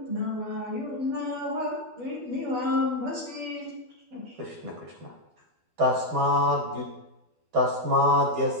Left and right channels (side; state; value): left; late; 12 ms